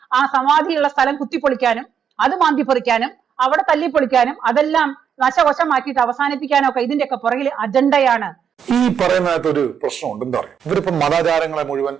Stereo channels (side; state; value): left; quieter; 7.8 dB